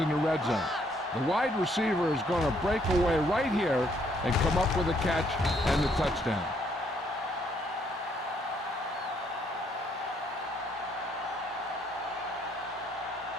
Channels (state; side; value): normal; both; correlation 0.69